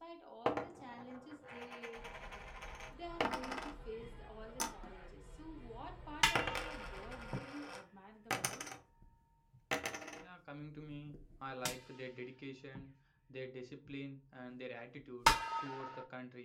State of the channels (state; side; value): identical; both; correlation 1.00